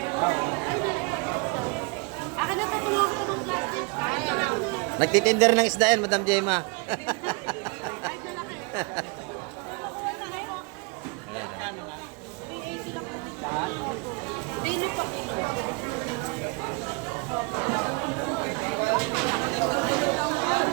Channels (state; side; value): quieter; left; 29.7 dB